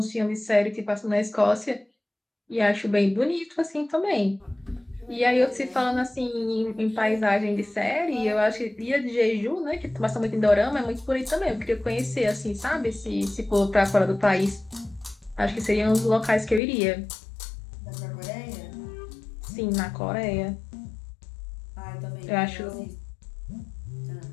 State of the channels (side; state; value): right; drops out; at 16.6 s